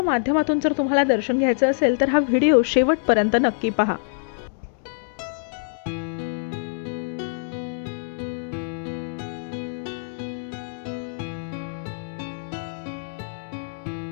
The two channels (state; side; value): silent; right; 62 dB below the other